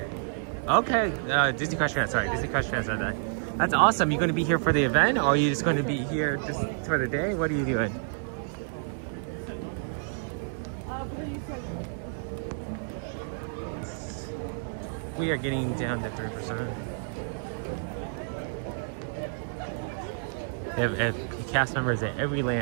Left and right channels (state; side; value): silent; left; digital silence